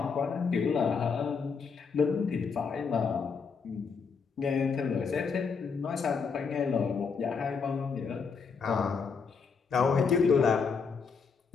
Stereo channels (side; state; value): right; quieter; 5.5 dB